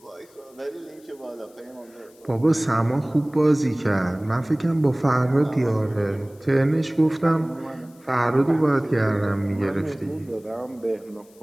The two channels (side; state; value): left; noise; hiss, 29 dB below the sound